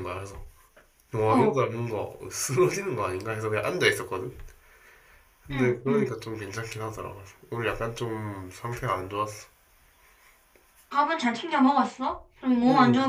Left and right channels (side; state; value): both; identical; correlation 1.00